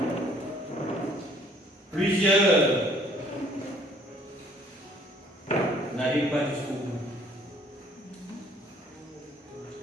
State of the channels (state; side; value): normal; both; correlation 0.59